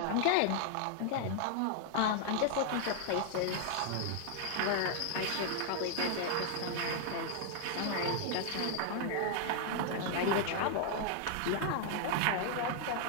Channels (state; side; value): different; both; correlation 0.00